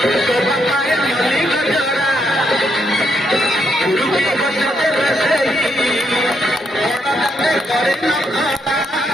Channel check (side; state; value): both; normal; correlation 0.77